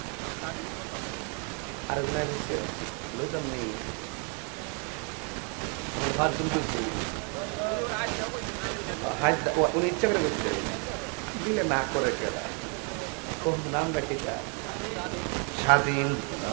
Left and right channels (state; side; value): quieter; left; 37.9 dB